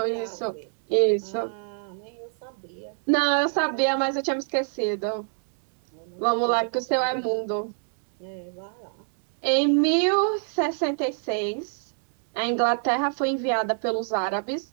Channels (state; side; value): silent; left; 61 dB below the other